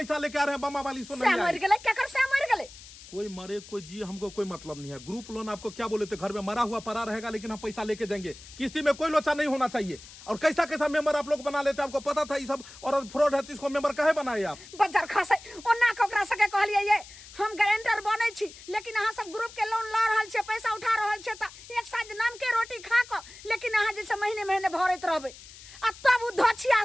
लेके आ रहे हैं, बम्मा वाली सुन मर गेले, क्या कर से मर गेले? कोई मरे कोई जी, हमको कोई मतलब नहीं है। ग्रुप लोन आपको क्या बोले थे, घर में मरा हुआ पड़ा रहेगा, लेकिन हम पैसा लेके जाएंगे। किस्ती में कोई लोचा नहीं होना चाहिए। और कैसा मेंबर आप लोग बना लेते हैं, आपको पता था ये सब और फ्रॉड है, तो इसको मेंबर काहे बनाए आप? बजार खासे ओना कोकरा सके कहलिए ये हम गारंटर बनै छी, लेकिन अहाँ सब ग्रुप के लोन ल रहल छे, पैसा उठा रहल छे, त एक साथ नाम के रोटी खा क, लेकिन अहाँ जे महीने भरैत रहबै। आ तब उ धछिया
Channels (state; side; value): noise; left; hiss, 18 dB below the sound